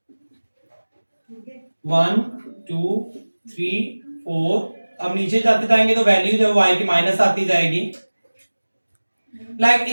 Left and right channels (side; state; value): both; inverted; correlation -1.00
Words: One two three four, अब नीचे जाते जाएंगे तो वैल्यू जो y की माइनस आती जाएगी। लाइक